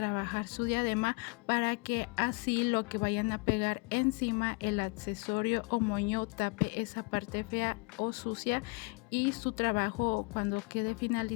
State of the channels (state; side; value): quieter; right; 30.7 dB